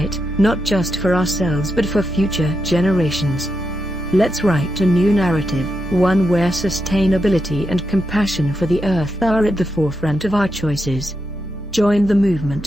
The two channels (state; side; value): normal; both; correlation 0.85